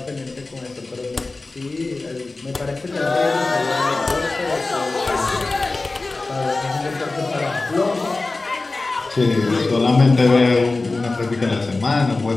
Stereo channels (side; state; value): right; quieter; 3.4 dB